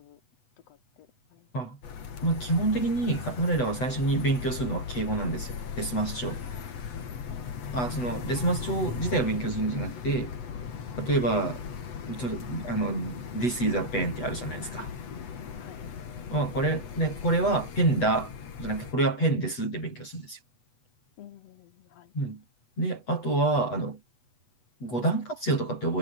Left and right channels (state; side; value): late; right; 8.1 ms